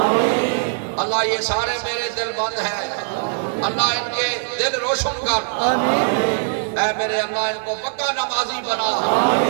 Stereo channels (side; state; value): left; silent; digital silence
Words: اللہ یہ سارے میرے دل بند ہیں، اللہ ان کے دل روشن کر، اے میرے اللہ ان کو پکا نمازی بنا،